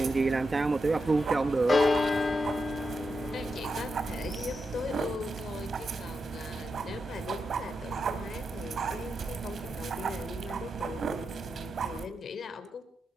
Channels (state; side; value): normal; both; correlation 0.87